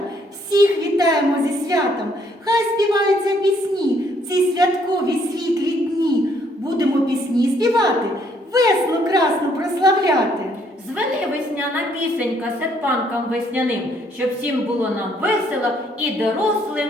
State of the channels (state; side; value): normal; both; correlation 0.68